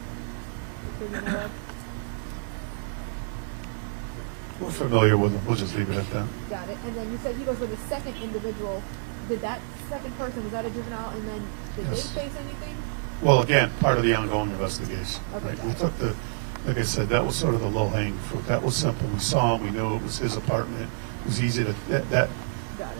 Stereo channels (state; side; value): silent; left; digital silence